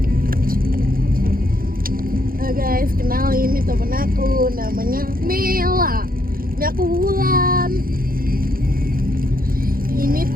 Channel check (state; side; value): late; left; 0.42 ms